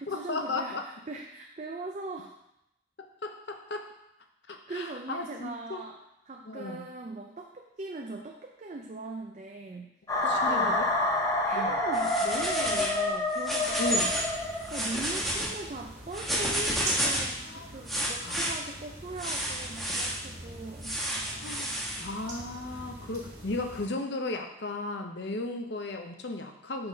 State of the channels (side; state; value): both; normal; correlation 0.24